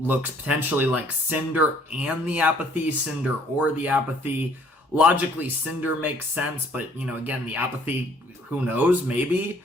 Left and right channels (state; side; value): normal; both; correlation 0.60